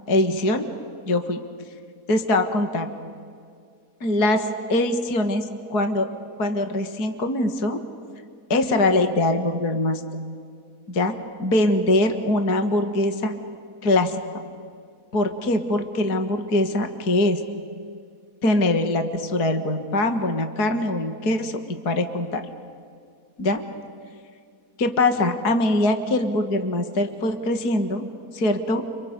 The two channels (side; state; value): right; late; 4.1 ms